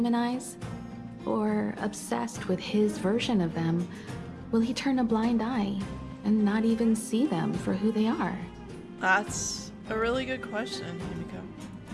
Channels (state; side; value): identical; both; correlation 1.00